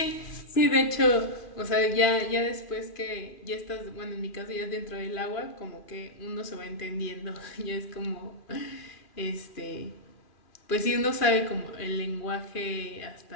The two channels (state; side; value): late; right; 2.4 ms